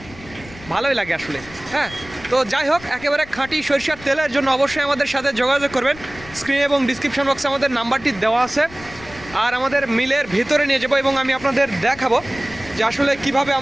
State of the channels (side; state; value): left; noise; rumble, 18 dB below the sound